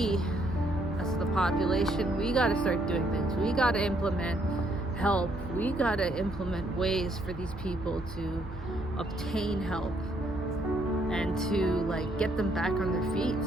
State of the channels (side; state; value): right; noise; hum, 12 dB below the sound